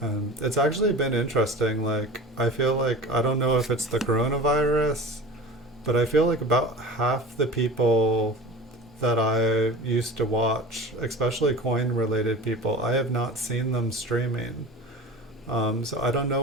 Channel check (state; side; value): normal; both; correlation 0.37